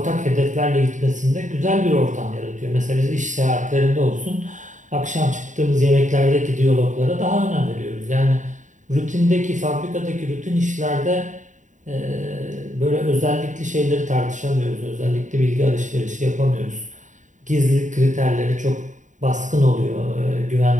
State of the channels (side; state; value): left; late; 0.36 ms